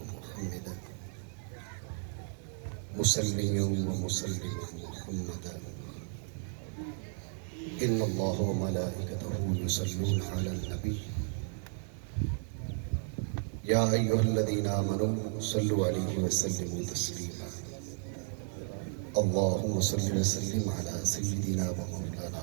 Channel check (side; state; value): left; silent; 55 dB below the other